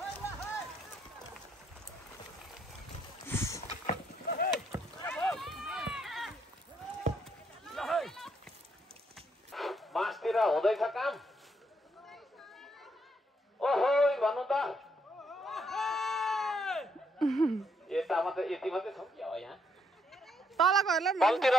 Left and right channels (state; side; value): normal; both; correlation 0.74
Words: बाँसतिर हुँदैछ काम ओहो भन्नु त यता मात्रै यति मात्रै छौ कि यहाँ तलकोहरूलाई तलतिर